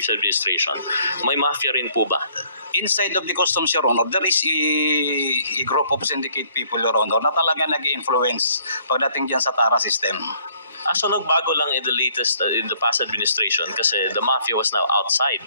administration, may Mafia rin po ba? Inside of the customs, Your Honor, there is a group of syndicate people, Your Honor, na talaga nag-influence pagdating dyan sa TARA system. So nagbago lang in the past administration kasi the mafia was now outside.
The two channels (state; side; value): inverted; both; correlation -0.63